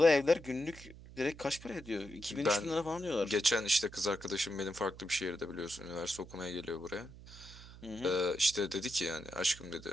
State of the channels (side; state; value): right; noise; hum, 17 dB below the sound